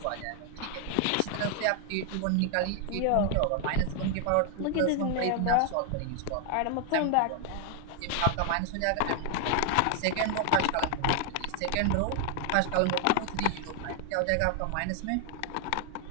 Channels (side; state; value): both; different; correlation 0.00